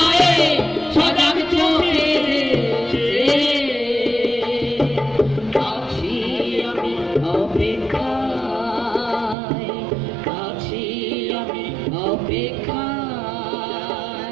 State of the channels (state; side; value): drops out; left; at 9.3 s